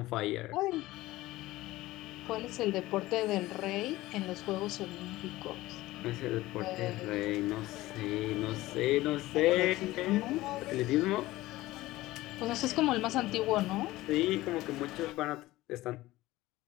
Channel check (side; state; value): right; quieter; 17.7 dB